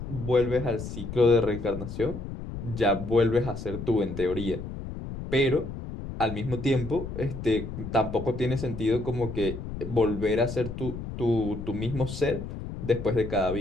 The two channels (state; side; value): noise; left; rumble, 8 dB below the sound